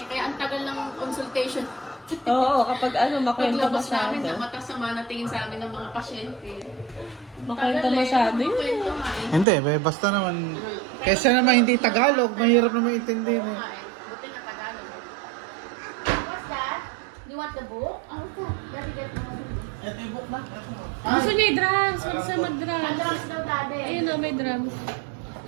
Kaya ang tagal ng consultation. Oo, kapag makwento Paglabas masyado. namin, matasama na tingin sa amin ng mga pasyente. Makwento masyado yun. Kwento nga eh. Hindi, basta naman. Kesa naman hindi Tagalog, mahirap naman intindihin eh. Buti na Tagalog. What's that? You want the book? Oh, daddy get the book. Ito yung book na. Gusto niya i-drums. Gusto siya Ang mag-drums. drums daw, daddy. Ayun o, may drums.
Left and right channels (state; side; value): drops out; left; at 9.5 s